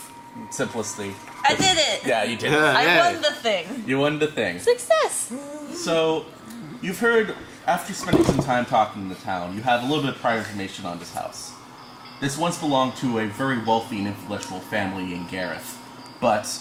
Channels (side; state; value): both; identical; correlation 1.00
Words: simplicity. I did it! Yeah, you did. I won the thing. You won the thing. Success! So, you've heard, after spending some time talking in the town, you have a little bit of prior information on this house. This once belonged to a very wealthy and influential family in Gareth, but